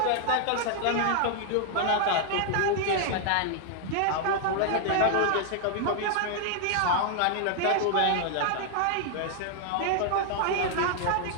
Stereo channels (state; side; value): different; both; correlation 0.00